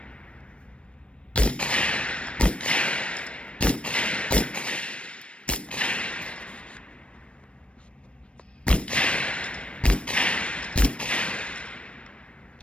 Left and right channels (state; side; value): late; right; 0.060 ms